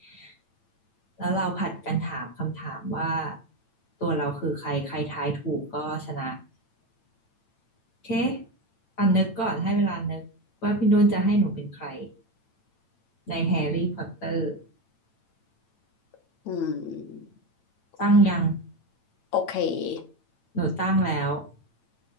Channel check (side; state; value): right; late; 8.9 ms